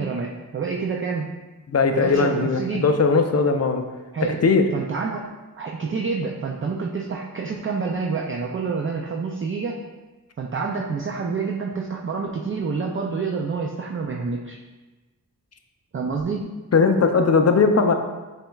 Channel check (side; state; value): both; normal; correlation 0.09